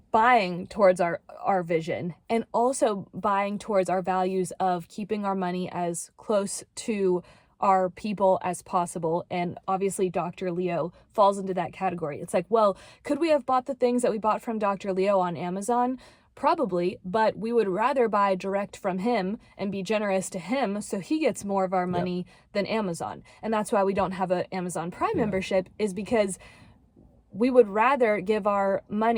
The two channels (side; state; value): both; identical; correlation 1.00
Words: buying towards our vision, and also buying towards our values of keeping our money as close to our people as possible. And obviously Dr. Leo falls into that category. It's like, well, could we have bought the things that we bought from Dr. Leo on Amazon? Probably, but we would rather buy direct from him and be generous to him so he gets more of our money than Amazon. And that's why we don't have an Amazon Prime membership, is because we would rather give our